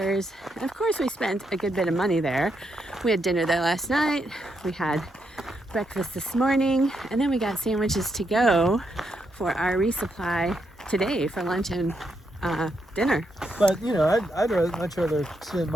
And of course, we spent a good bit of money there. We had dinner there last night. We had breakfast this morning, and then we got sandwiches to go for our resupply today for lunch and dinner. But you know, I'd much rather spend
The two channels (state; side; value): normal; both; correlation 0.80